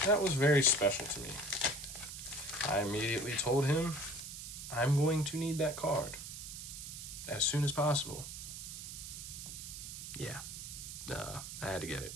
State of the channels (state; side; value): noise; right; hiss, 9 dB below the sound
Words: that was very special to me. I immediately told him I'm going to need that card as soon as possible. Yeah, I had to get it.